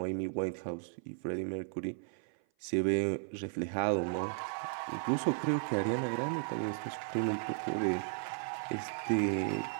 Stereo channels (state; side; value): silent; left; 54 dB below the other